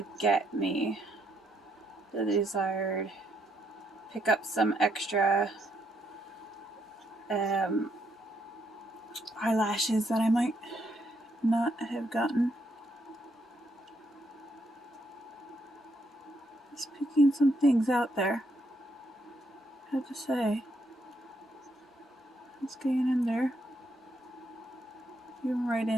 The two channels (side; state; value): both; normal; correlation 0.76